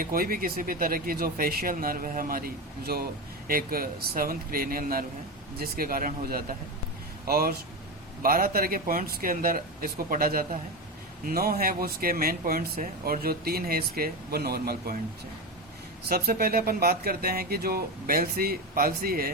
कोई भी किसी भी तरह की जो फेशियल नर्व है हमारी, जो एक सेवंथ क्रेनियल नर्व है, जिसके कारण हो जाता है। और 12 तरह के पॉइंट्स के अंदर इसको पढ़ा जाता है। 9 है वो उसके मेन पॉइंट्स है, और जो 3 है इसके वो नॉर्मल पॉइंट्स है। सबसे पहले अपन बात करते हैं कि जो बेल्सी पाल्सी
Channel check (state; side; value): normal; both; correlation 0.18